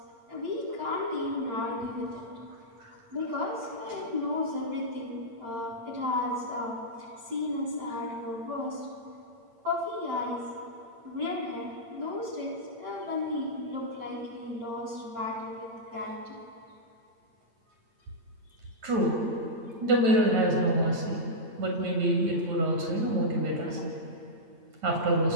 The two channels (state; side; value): late; left; 8.8 ms